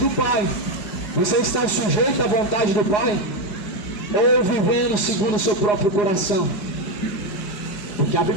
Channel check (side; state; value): right; late; 4.8 ms